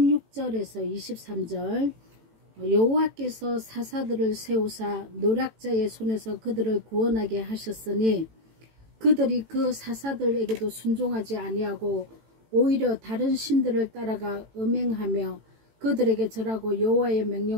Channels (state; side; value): late; left; 18 ms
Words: 23절. 여호와께서 사사들을 세우사 노략자의 손에서 그들을 구원하게 하셨으니 그들이 그 사사들에게도 순종하지 아니하고 오히려 다른 신들을 따라가 음행하며 그들에게 절하고 여호와의